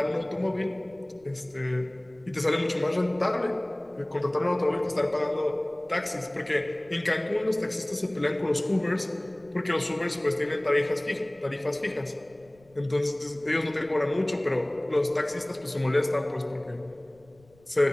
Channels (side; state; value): left; noise; rumble, 29 dB below the sound